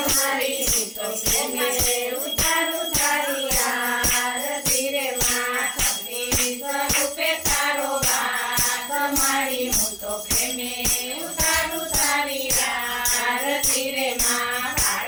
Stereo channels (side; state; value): both; identical; correlation 1.00